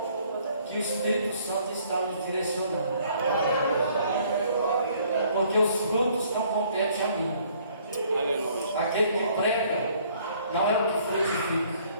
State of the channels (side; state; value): both; inverted; correlation -0.61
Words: que o Espírito Santo está nos direcionando, porque os frutos não competem a mim. Aquele que prega não é o que frutifica.